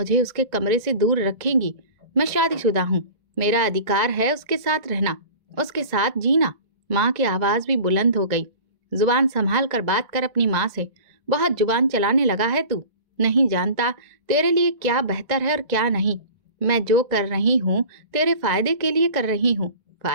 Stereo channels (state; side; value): late; left; 1.9 ms